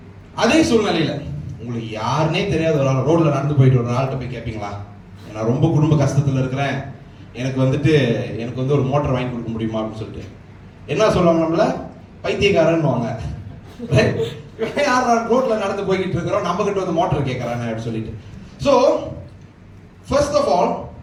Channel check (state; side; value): identical; both; correlation 1.00